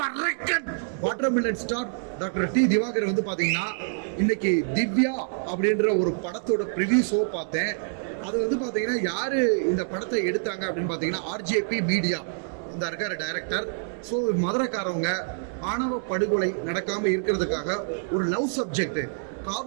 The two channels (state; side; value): silent; left; 61 dB below the other